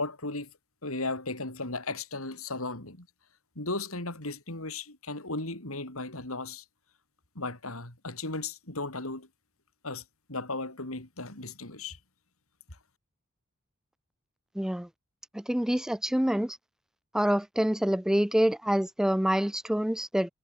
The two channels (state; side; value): normal; both; correlation 0.75